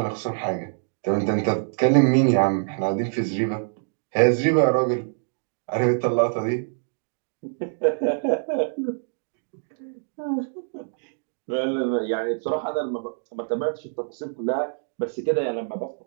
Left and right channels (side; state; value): left; silent; digital silence